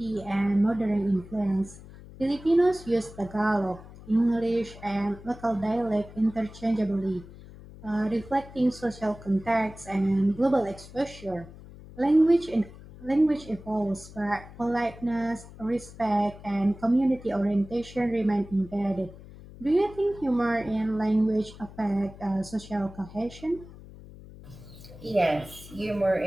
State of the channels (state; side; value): noise; left; hum, 18 dB below the sound